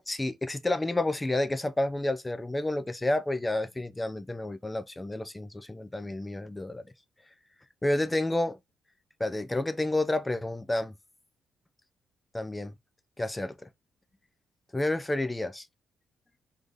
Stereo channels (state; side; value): normal; both; correlation 0.96